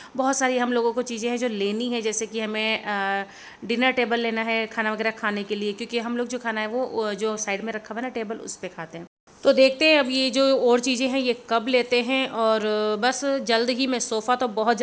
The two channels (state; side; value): identical; both; correlation 1.00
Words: बहुत सारी हम लोगों को चीज़ें हैं जो लेनी है। जैसे कि हमें डिनर टेबल लेना है खाना वगैरह खाने के लिए, क्योंकि हम लोग जो खाना है वो जो साइड में रखा हुआ है ना टेबल, उस पर खाते हैं। तो देखते हैं अब ये जो और चीज़ें हैं ये कब लेते हैं। और बस जल्द ही मैं सोफ़ा तो बहुत